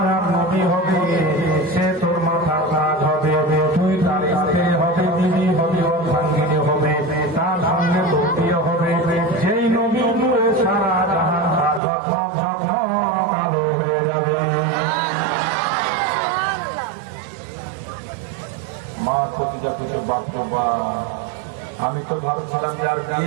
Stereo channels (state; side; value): drops out; left; at 11.8 s